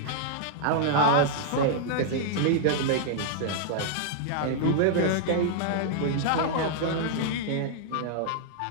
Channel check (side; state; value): both; different; correlation -0.01